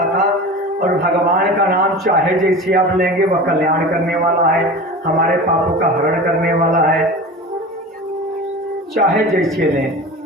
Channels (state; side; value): normal; both; correlation 0.33